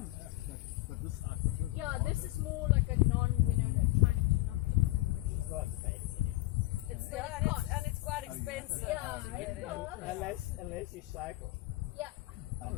But this I prefer. Yeah, this is more like a non, you know, trying to not. Not fancy. It's and it's quite expensive. Yeah, to get it's in. cool. Unless you cycle. Yeah.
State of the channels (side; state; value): right; quieter; 18.7 dB